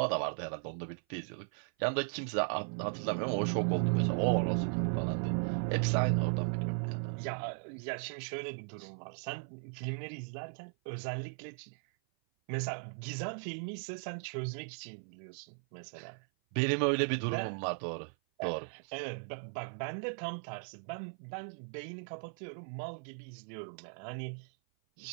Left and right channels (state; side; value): silent; left; 53 dB below the other